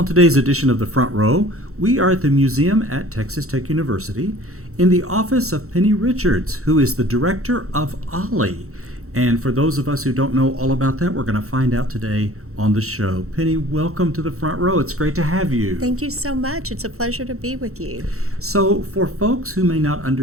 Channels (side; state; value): left; late; 0.64 ms